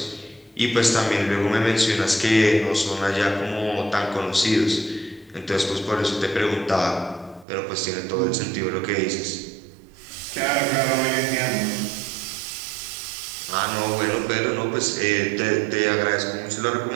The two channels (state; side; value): drops out; left; at 7.5 s